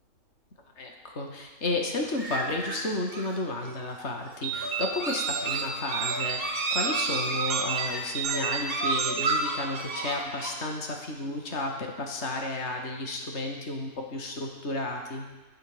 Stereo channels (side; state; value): right; late; 3.2 ms